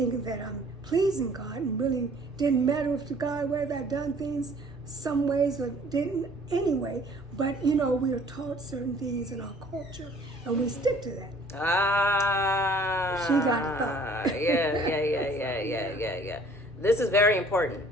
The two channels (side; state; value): both; normal; correlation 0.54